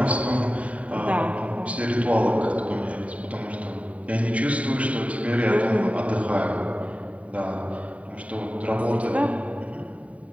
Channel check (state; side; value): late; left; 0.067 ms